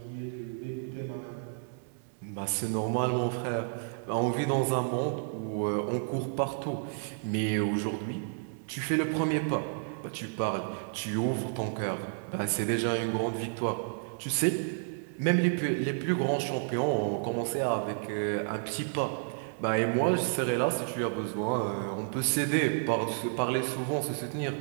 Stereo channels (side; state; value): left; silent; 56 dB below the other